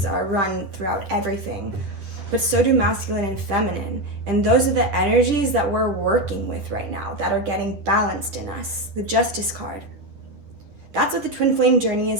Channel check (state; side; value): late; left; 10 ms